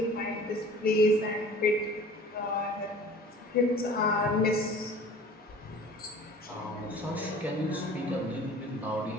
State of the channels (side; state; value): both; normal; correlation 0.45